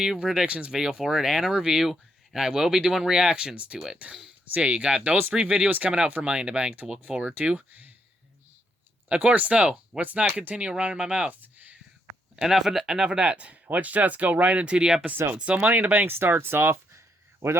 predictions video for it and a review, and I will be doing reactions to it. So yeah, you got those 3 videos coming out for Money in the Bank to look forward to. Of course, though, let's not continue running my mouth. Enough of that. Let's just go right into the episode. So Money in the Bank starts off with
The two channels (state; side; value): normal; both; correlation 0.76